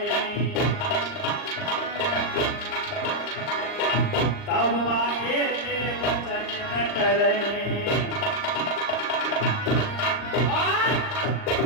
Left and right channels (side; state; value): right; late; 39 ms